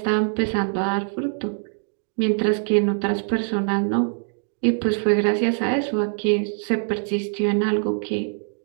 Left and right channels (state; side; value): silent; left; 59 dB below the other